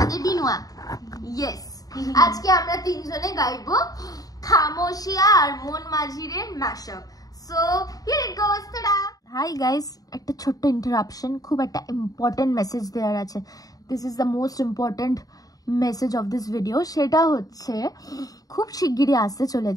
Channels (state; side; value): late; right; 0.18 ms